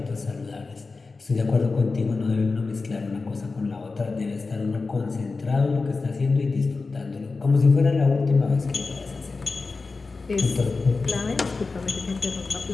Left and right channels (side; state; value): right; quieter; 4.0 dB